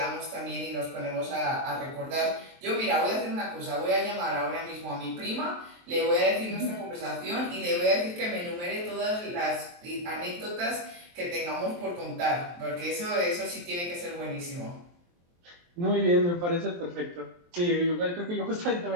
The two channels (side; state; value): left; late; 23 ms